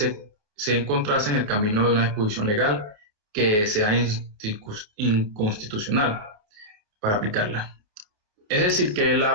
encontrase en el camino de una disposición legal que sea inconstitucional para aplicarla. Es decir, que la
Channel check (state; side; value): late; left; 28 ms